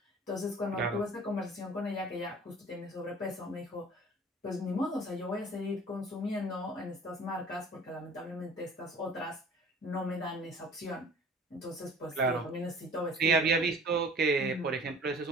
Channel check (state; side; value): normal; both; correlation 0.47